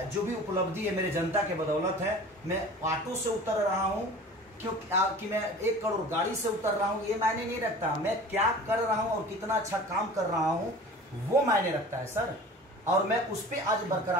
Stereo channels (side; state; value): both; normal; correlation 0.41